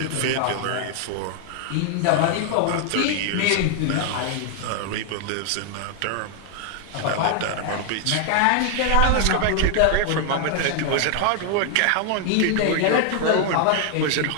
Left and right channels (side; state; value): both; different; correlation 0.00